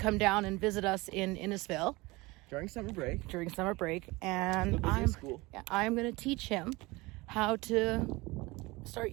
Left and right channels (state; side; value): quieter; left; 22.7 dB